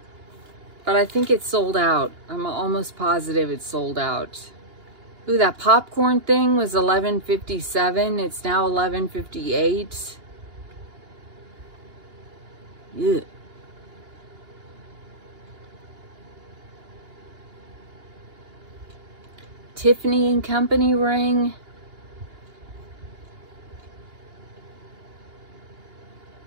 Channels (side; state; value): left; late; 2.8 ms